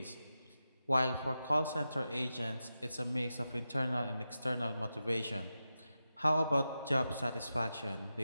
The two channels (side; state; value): both; inverted; correlation -0.91